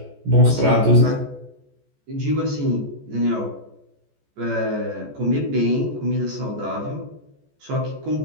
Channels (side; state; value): left; late; 14 ms